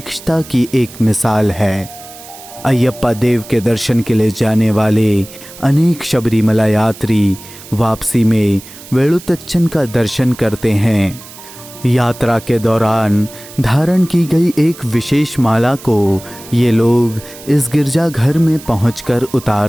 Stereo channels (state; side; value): noise; right; hiss, 18 dB below the sound